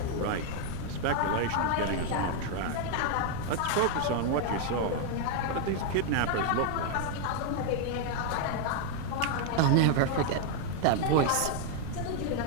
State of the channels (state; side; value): different; both; correlation 0.00